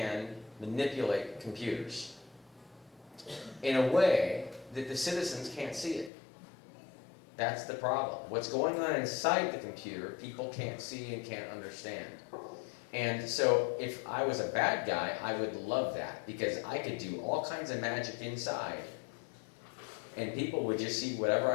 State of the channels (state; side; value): drops out; right; at 6.1 s